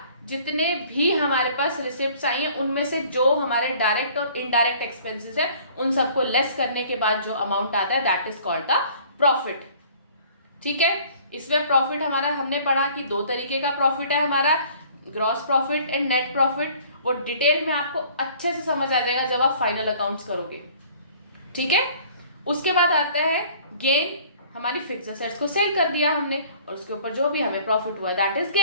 जितने भी हमारे पास रिसिप्ट्स आई हैं उनमें से जो हमारे डायरेक्ट और इनडायरेक्ट एक्सपेंसेस है उन सबको लेस करने के बाद जो अमाउंट आता है that is called the profit. ठीक है, इसमें प्रॉफिट हमारा हमने पढ़ा कि 2 तरीके का प्रॉफिट है हमारा, gross profit and net profit. वो डिटेल में आपको अच्छे से समझ आ जाएगा जब आप फाइनल अकाउंट्स करोगे। ठीक है, उसके बाद आता है गेन। हमारी फिक्स असेट्स को सेल कर दिया हमने और उसके ऊपर जो भी हमें प्रॉफिट हुआ that is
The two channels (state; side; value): inverted; both; correlation -0.53